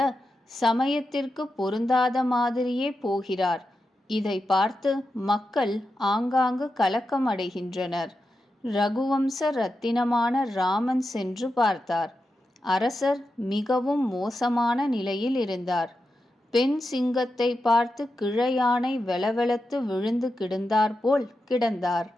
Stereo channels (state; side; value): normal; both; correlation 0.89